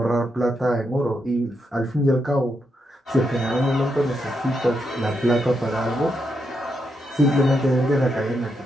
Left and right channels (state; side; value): normal; both; correlation 0.82